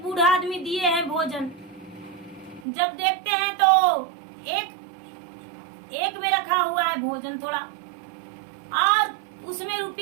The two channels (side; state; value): left; drops out; at 2.7 s